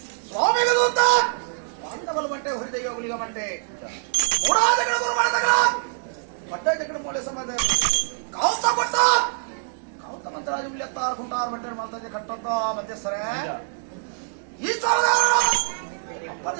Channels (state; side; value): silent; left; 62 dB below the other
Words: ಸ್ವಾಮಿಗ ದೂತ ಪಾಂಡವಲ ಬಂಟೆ ಹೊರಿದೆಯ ಗುಲಿಗ ಬಂಟೆ ಮೂಡಾದಗಳ ಗುರು ಮಾಡದಗಳ ಬಟ್ಟೆ ಜಗಡ ಮೂಲೆ ಸಂಬಂಧ ಕಾಲ್ತ ಬಟ್ಟ ಕಾಲ್ತ ಮಂತ್ರಾಜು ಉಳಿಯತ್ತಾರ ಕುಂಟಾರ ಬಂಟೆ ಮಾಡ್ತಾಜೆ ಕಟ್ಟಂತ ಮಧ್ಯಸ್ಥರೇ ಈ ಸಾಲದಾರ